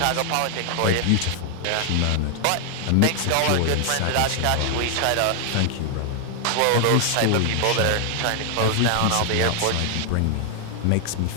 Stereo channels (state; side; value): different; both; correlation 0.00